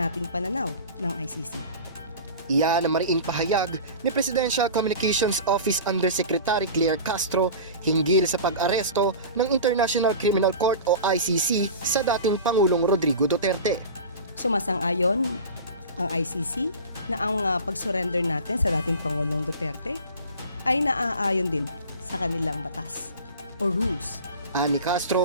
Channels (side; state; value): both; inverted; correlation -0.34